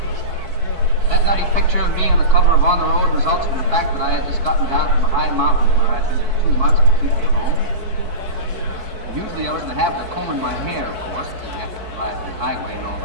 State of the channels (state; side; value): late; left; 4.5 ms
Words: That nutty picture of me on the cover of On the Road results from the fact that I had just gotten down from a high mountain where I'd been for 2 months completely alone. Usually I was in the habit of combing my hair, of course, because you have to drive the highway and all